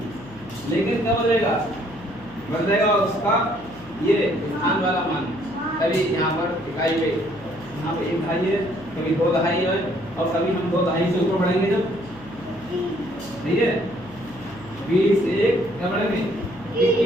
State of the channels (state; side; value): noise; left; hum, 21 dB below the sound